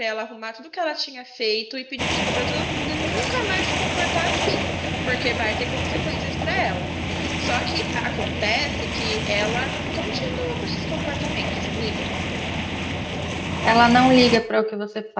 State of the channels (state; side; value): identical; both; correlation 1.00